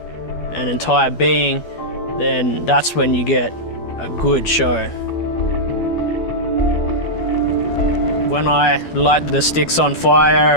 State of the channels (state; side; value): late; right; 12 ms